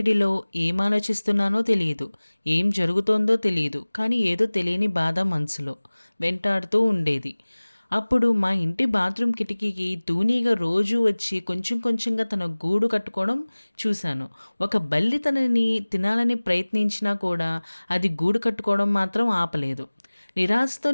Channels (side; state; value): both; inverted; correlation -1.00